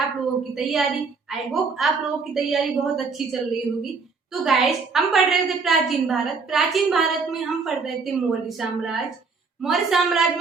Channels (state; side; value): quieter; left; 4.7 dB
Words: लोगों की तैयारी। आई होप आप लोगों की तैयारी बहुत अच्छी चल रही होगी। तो गाइस, हम पढ़ रहे थे प्राचीन भारत। प्राचीन भारत में हम पढ़ रहे थे मौर्य साम्राज्य। मौर्य साम्राज्य